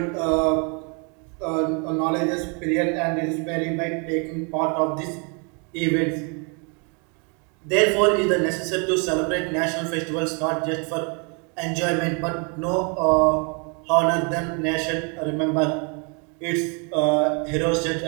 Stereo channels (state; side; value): quieter; left; 35.4 dB